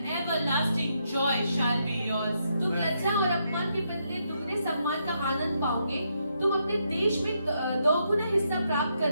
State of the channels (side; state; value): both; inverted; correlation -0.79